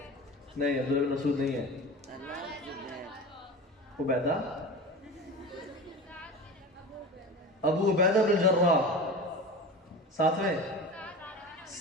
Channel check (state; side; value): normal; both; correlation 0.31